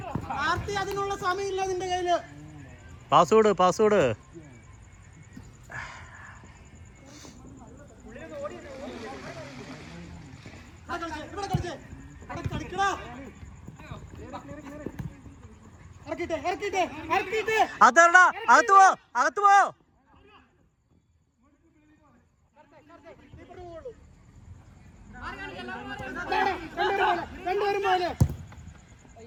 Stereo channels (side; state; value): both; identical; correlation 1.00